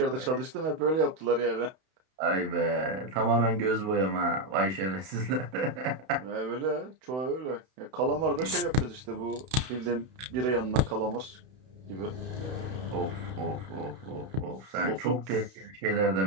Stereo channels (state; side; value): late; left; 32 ms